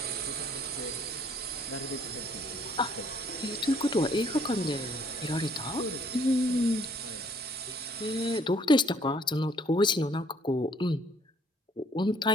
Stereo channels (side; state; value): both; normal; correlation 0.62